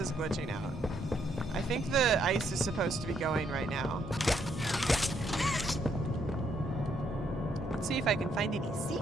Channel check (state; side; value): normal; both; correlation 0.73